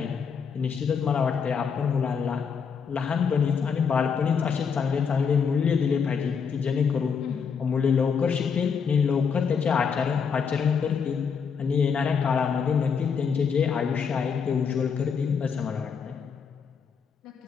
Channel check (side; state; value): right; quieter; 6.3 dB